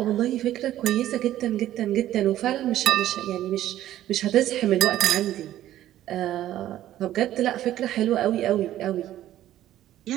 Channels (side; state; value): left; quieter; 13.1 dB